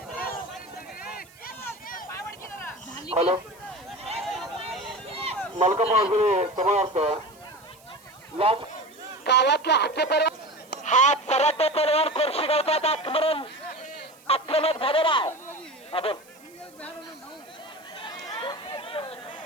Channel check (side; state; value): right; noise; hiss, 26 dB below the sound